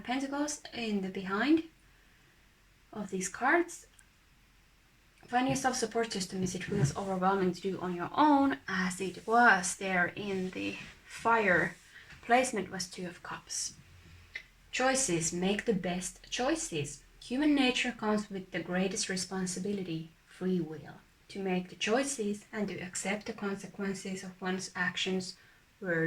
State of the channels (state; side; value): identical; both; correlation 1.00